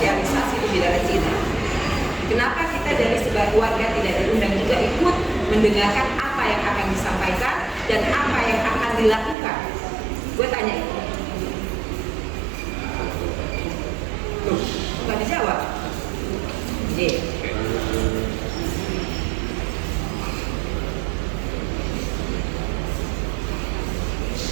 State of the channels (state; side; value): drops out; left; at 9.3 s